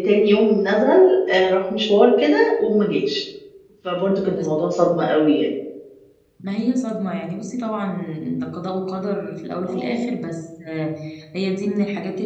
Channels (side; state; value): both; identical; correlation 1.00